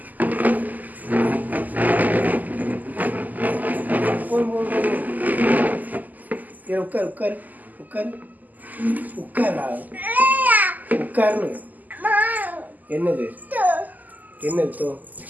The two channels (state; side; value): late; left; 0.082 ms